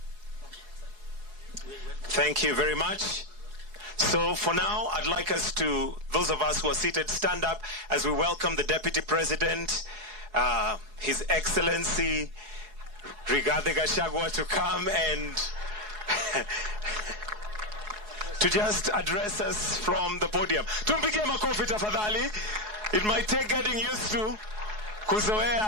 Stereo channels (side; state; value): left; late; 4.7 ms